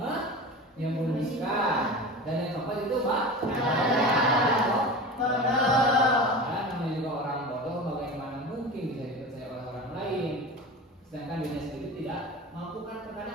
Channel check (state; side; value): normal; both; correlation 0.31